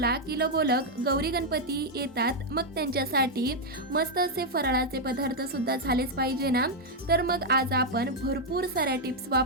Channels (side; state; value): both; normal; correlation -0.02